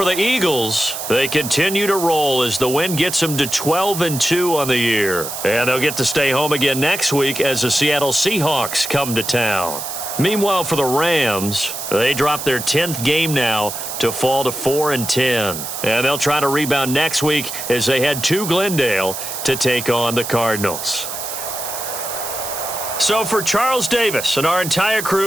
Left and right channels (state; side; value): noise; right; hiss, 7 dB below the sound